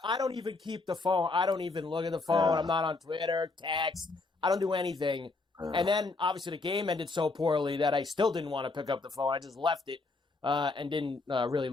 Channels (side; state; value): right; quieter; 3.6 dB